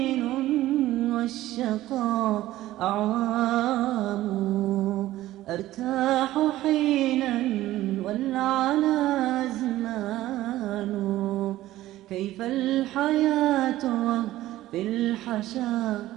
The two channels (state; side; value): quieter; left; 15.3 dB